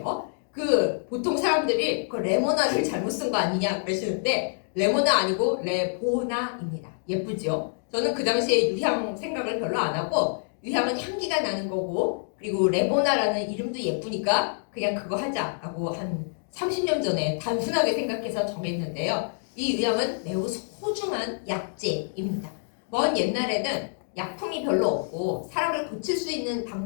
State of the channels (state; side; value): silent; right; digital silence